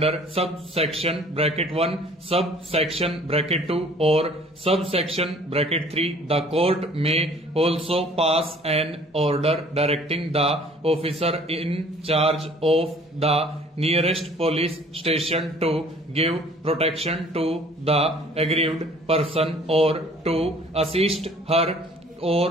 subsection bracket 1, subsection bracket 2 or subsection bracket 3, the court may also pass an order directing the officer in charge of the nearest police station to give protection to the aggrieved person or to assist her or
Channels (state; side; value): normal; both; correlation 0.53